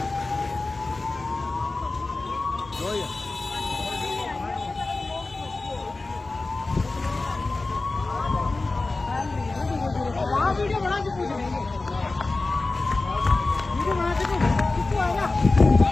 वीडियो बना के पूछ लेंगे वीडियो बना के कितने आएगा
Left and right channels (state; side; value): quieter; right; 3.4 dB